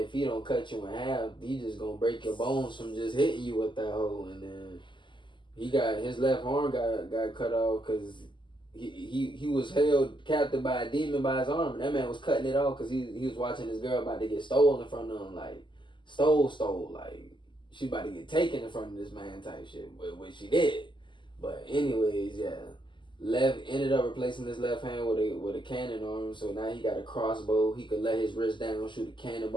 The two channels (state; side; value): late; right; 0.23 ms